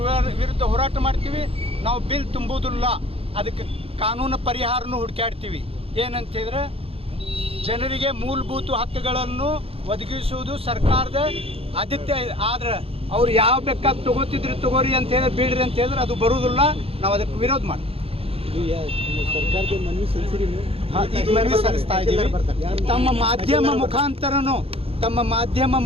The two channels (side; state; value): left; late; 0.28 ms